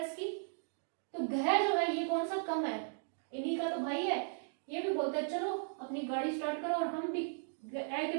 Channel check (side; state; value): left; silent; digital silence